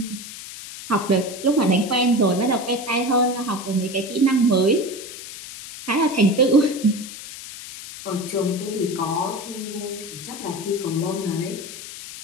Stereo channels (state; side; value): noise; left; hiss, 12 dB below the sound